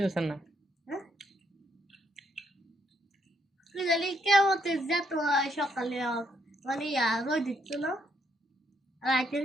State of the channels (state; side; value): normal; both; correlation 0.74